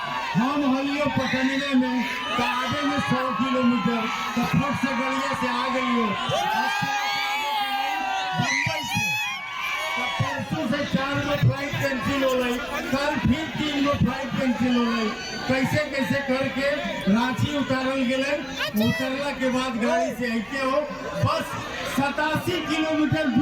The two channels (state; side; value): identical; both; correlation 1.00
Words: हम हलियो पकड़ने में तो आगे में 100 किलोमीटर तो फट से गड़िया से आ गई हो बम्बई से। तो परसों से 4 गो फ्लाइट कैंसिल हो गई, कल फिर 3 गो फ्लाइट कैंसिल हो गई। कैसे कैसे करके रांची उतारल गए। उतरला के बाद गाड़ी से आते हो बस 87 किलोमीटर